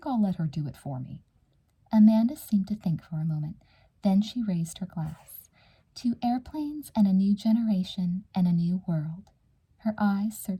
I'll let her do it for me." Amanda seemed to think for a moment. Then she raised her glass. "To airplanes and a new generation and a new world." Her eyes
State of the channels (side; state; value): both; identical; correlation 1.00